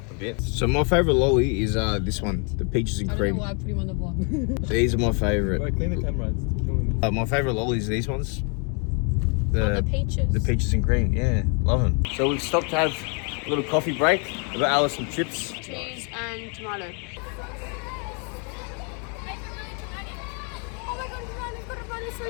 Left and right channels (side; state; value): right; quieter; 37.0 dB